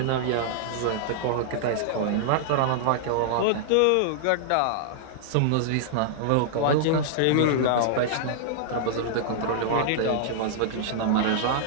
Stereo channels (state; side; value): different; both; correlation -0.01